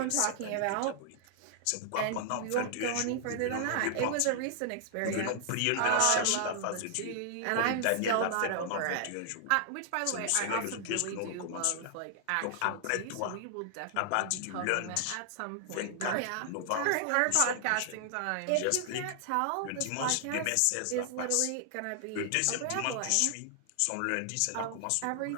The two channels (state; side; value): different; both; correlation -0.01